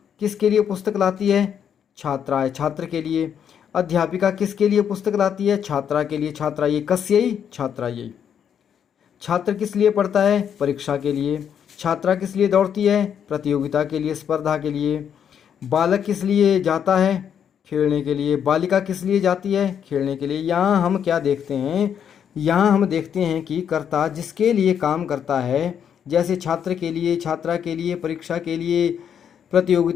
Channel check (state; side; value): quieter; right; 8.4 dB